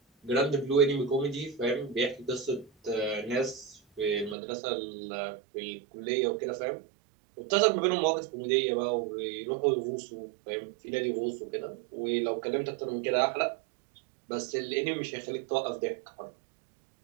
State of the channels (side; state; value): left; drops out; at 4.4 s